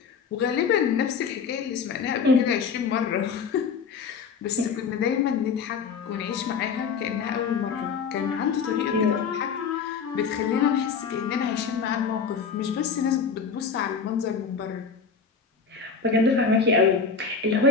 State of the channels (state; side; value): quieter; right; 5.7 dB